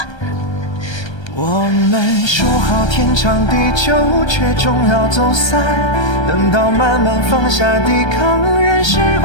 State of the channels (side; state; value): right; late; 1.3 ms